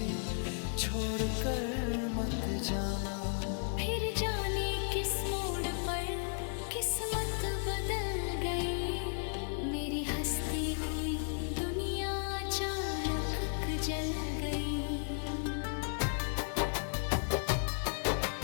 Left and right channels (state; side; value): silent; right; 55 dB below the other